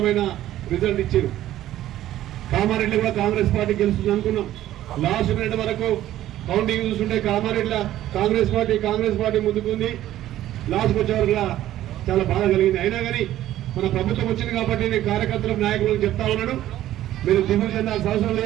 రిజల్ట్ ఇచ్చారు. కామారెడ్డి కూడా కాంగ్రెస్ పార్టీ గెలుస్తుంది అనుకున్నాం. లాస్ట్ మినిట్ వరకు కౌంటింగ్ చూస్తుంటే కామారెడ్డిలో కాంగ్రెస్ పార్టీ ముందుకుంది. లాస్ట్కి వచ్చే వరకు చాలా బాధ కలిగింది. అయినా కానీ మన ప్రభుత్వం వచ్చింది కాబట్టి నేను కార్యకర్తలకు నాయకులకు చెప్తా ఉన్నాను, మీరు దిగులు చెందాల్సిన అవసరం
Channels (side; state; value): left; quieter; 13.4 dB